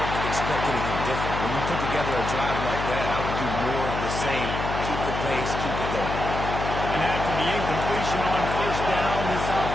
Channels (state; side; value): noise; left; hum, 4 dB below the sound